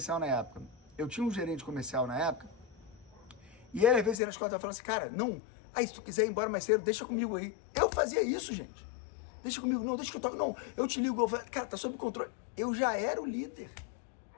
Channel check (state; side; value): drops out; right; at 4.2 s